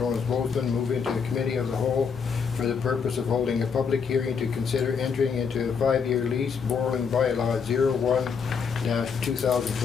move into the Committee of the Whole for the purpose of holding a public hearing to consider entering into a 5-year lease borrowing bylaw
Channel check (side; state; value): right; quieter; 6.1 dB